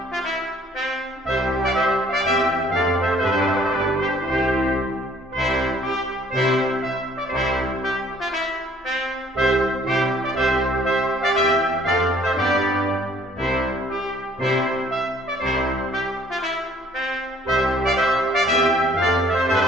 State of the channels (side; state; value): both; normal; correlation 0.59